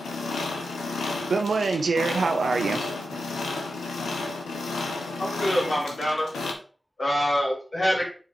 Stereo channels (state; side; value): normal; both; correlation 0.89